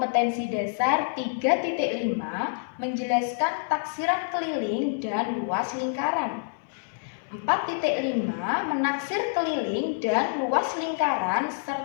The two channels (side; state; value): right; silent; digital silence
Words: dasar 3.5 menjelaskan taksiran keliling dan luas lingkaran. 4.5 menaksir keliling dan luas lingkaran